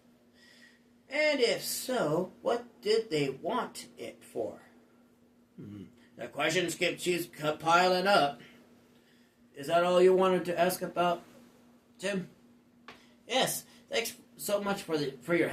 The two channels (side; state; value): both; identical; correlation 1.00